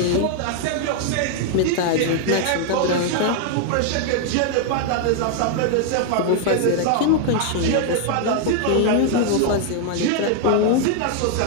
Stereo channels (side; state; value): both; different; correlation 0.00